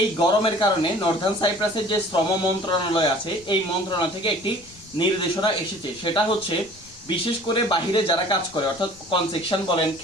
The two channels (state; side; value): noise; left; rumble, 24 dB below the sound